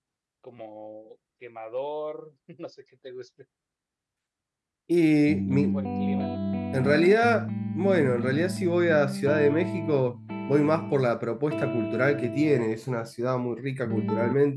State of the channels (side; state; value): both; identical; correlation 1.00